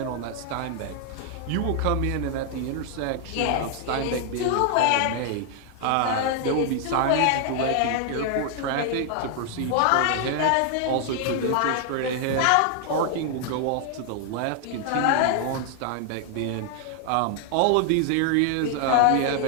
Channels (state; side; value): different; both; correlation 0.00